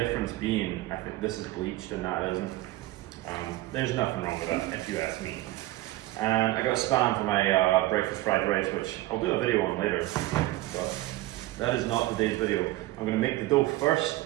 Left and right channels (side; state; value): left; quieter; 17.6 dB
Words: being, I think this is bleached and that isn't. There's nothing wrong with that, if you ask me. And I got Spam for my breakfast fried rice, which I'll do a video on later, but that is not today's video. I'm going to make the dough first.